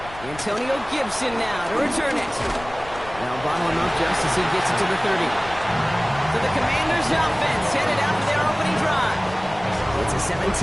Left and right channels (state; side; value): noise; left; rumble, 17 dB below the sound